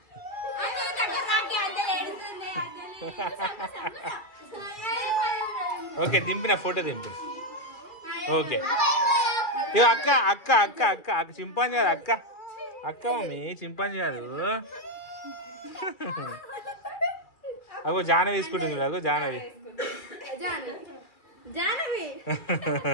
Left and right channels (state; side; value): late; right; 2.3 ms